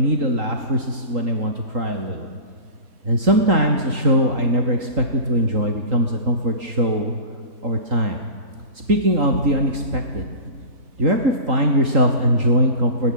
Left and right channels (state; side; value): late; left; 3.8 ms